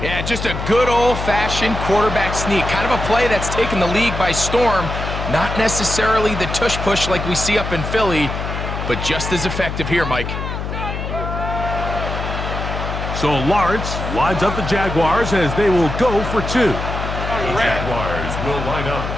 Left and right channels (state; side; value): noise; left; hum, 5 dB below the sound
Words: Yeah, just a good old-fashioned quarterback sneak. Kind of a play that's taken the league by storm. Not necessarily the tush-push like we see up in Philly, but just as effective here, Mike. So Lawrence lines up the Jaguars as they will go for two. The Jaguars will line up